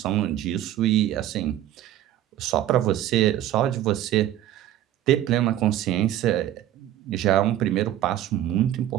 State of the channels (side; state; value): left; quieter; 12.7 dB